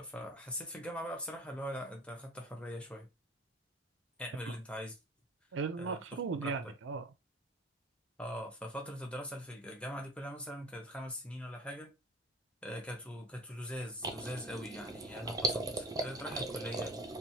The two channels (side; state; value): both; normal; correlation 0.43